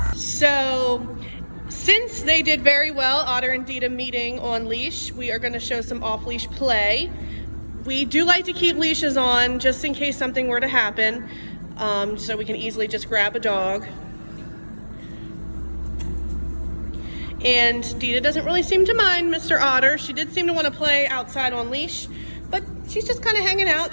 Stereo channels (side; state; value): both; inverted; correlation -1.00